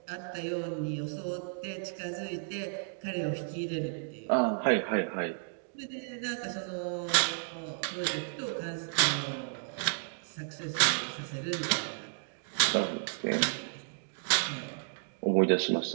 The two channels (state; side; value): silent; left; digital silence